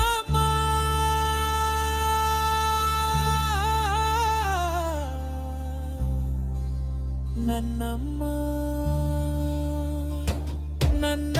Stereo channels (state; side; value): identical; both; correlation 1.00